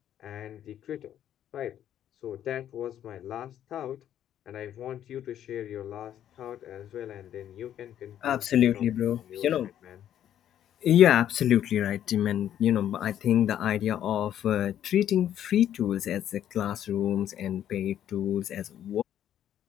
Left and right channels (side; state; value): right; quieter; 10.8 dB